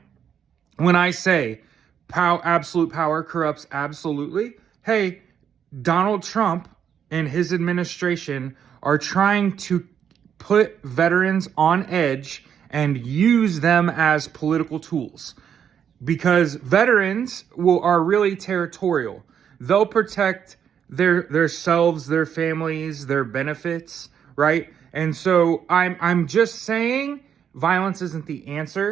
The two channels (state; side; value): quieter; left; 8.3 dB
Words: when I say absolute power corrupts absolutely, hey, Donald Trump and his administration are trying to put veterans on edge and use them as political tools because veterans are really territorial. They'll protect their selves, their families, their benefits, right? And so I'm just saying violence isn't the